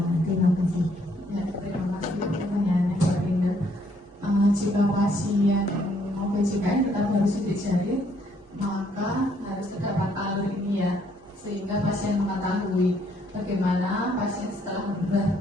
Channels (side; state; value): both; normal; correlation 0.68